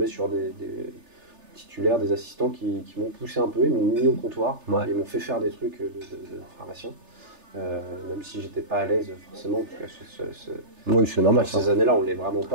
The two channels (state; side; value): late; left; 3.4 ms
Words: sur des titulaires, des assistants qui m'ont poussé un peu, ils m'ont mis au comptoir, ils m'ont fait faire des trucs de pharmacien. Même si j'étais pas à l'aise forcément, parce que oui, c'est normal. Ces années-là, on l'est vraiment